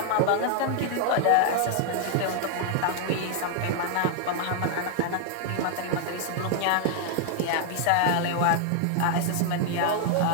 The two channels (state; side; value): different; both; correlation 0.00